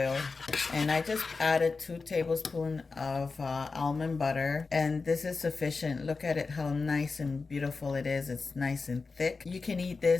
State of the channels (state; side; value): quieter; right; 4.3 dB